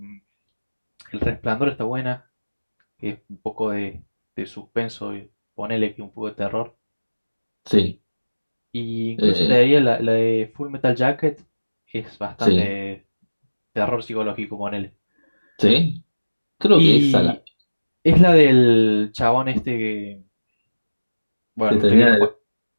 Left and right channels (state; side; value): inverted; both; correlation -1.00